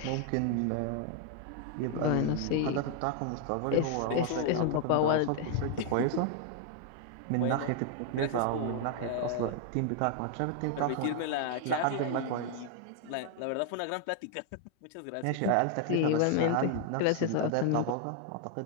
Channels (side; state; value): both; different; correlation 0.00